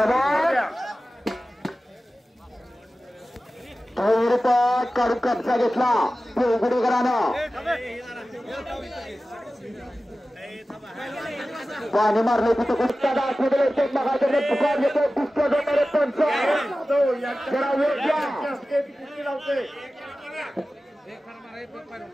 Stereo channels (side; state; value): both; normal; correlation 0.95